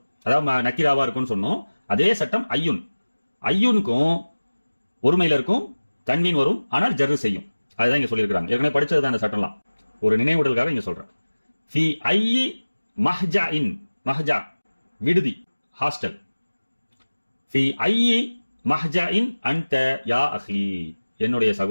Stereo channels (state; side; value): inverted; both; correlation -1.00